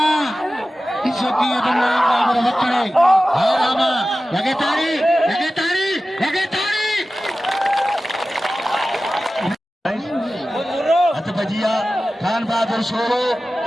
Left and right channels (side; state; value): both; normal; correlation 0.95